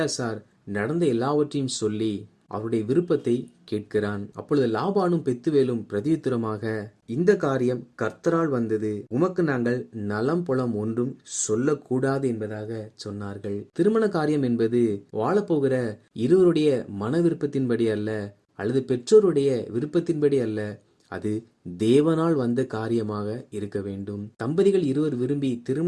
நடந்த எல்லாவற்றையும் சொல்லி அவருடைய விருப்பத்தை கேட்கிறான். அப்பொழுது லாபானும் பெத்துவேலும் பிரதியுத்தரமாக, இந்த காரியம் கர்த்தரால் வந்தது, உமக்கு நாங்கள் நலம் புலம் ஒன்றும் சொல்லக்கூடாது என்பதாக சொன்னார்கள். திருமண காரியம் என்பது வாழப்போகிற இருவருடைய மன விருப்பத்தின்படி அல்ல, அல்லது பெற்றோருடைய விருப்பத்தின்படி அல்ல, அது தேவனால் வந்த காரியமாக இருக்க வேண்டும். தம்பதிகள் இருவர் விரும்பி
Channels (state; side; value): identical; both; correlation 1.00